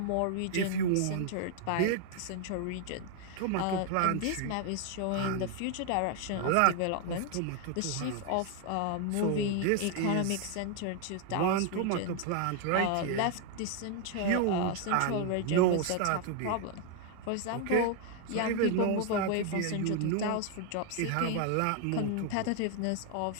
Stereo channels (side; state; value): both; different; correlation 0.00